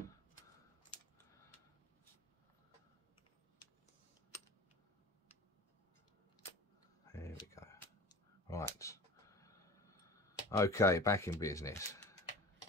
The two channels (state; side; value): normal; both; correlation 0.37